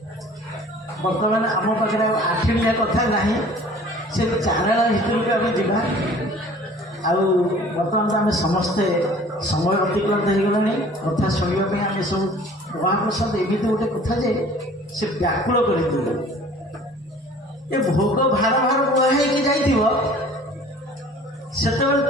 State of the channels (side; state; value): both; normal; correlation 0.49